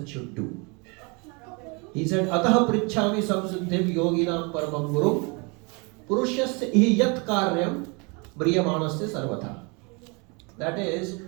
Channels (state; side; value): quieter; left; 30.7 dB